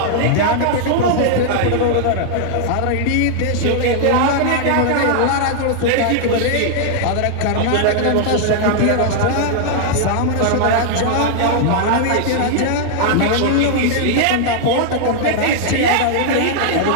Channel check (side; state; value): both; different; correlation -0.01